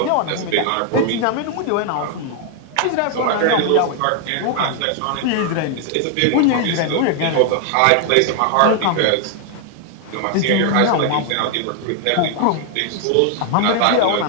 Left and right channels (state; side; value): different; both; correlation 0.00